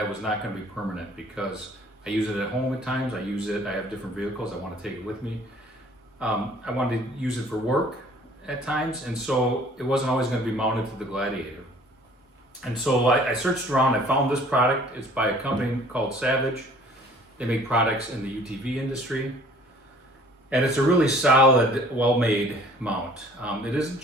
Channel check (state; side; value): normal; both; correlation 0.53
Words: was not going to be permanent because I use it at home at times. I have different vehicles. I want to take it with me. I wanted to use it for work at times, and so it wasn't always going to be mounted to the Gladiator. And so I searched around, I found this product. It's by a company called Savage. They make products in the UTV industry. And it's a really solid, well-made mount. It isn't